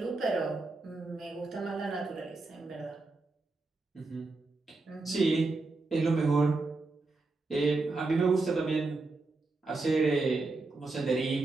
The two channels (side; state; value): left; quieter; 3.5 dB